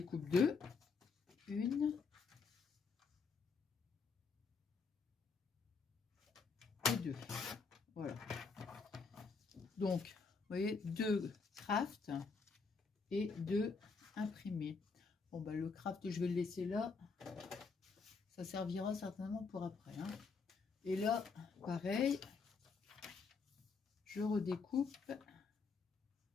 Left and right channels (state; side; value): quieter; right; 4.8 dB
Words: deux. Une. Et deux. Voilà. Donc, vous voyez, deux craft et deux imprimés. Bon, bah, le craft, je vais le laisser là. Ça servira certainement pour après. Hein. Et là, pareil, je redécoupe